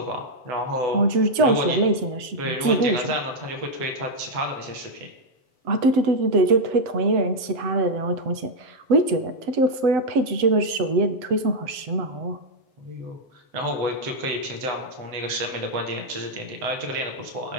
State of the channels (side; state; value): left; late; 7.9 ms